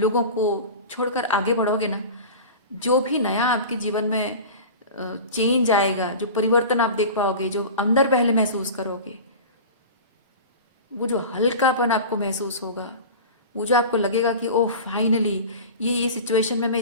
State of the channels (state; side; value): inverted; both; correlation -0.33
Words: को छोड़कर आगे बढ़ोगे ना, जो भी नया आपके जीवन में चेंज आएगा, जो परिवर्तन आप देख पाओगे, जो अंदर पहले महसूस करोगे, वो जो हल्कापन आपको महसूस होगा, वो जो आपको लगेगा कि ओह फाइनली ये सिचुएशन में मैं